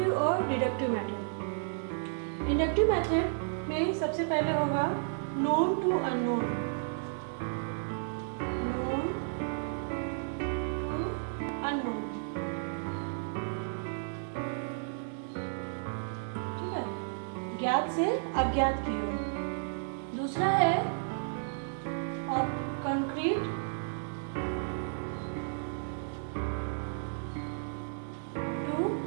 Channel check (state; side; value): silent; left; digital silence